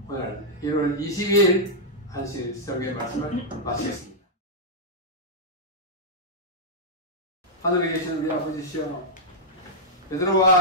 오늘 1월 22일 안식 설교의 말씀을 마치겠습니다. 하늘에 계시는 우리 아버지시여,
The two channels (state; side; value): normal; both; correlation -0.08